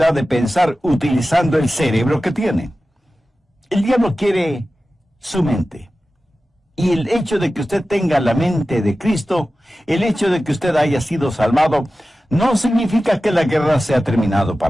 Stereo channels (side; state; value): both; normal; correlation 0.95